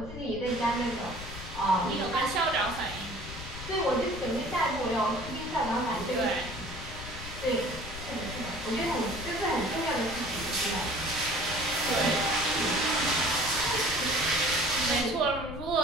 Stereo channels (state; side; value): noise; left; rumble, 11 dB below the sound